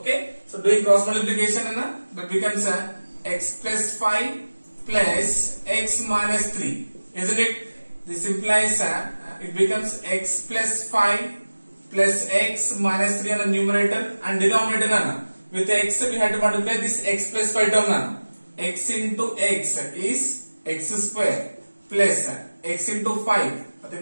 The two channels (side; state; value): both; inverted; correlation -1.00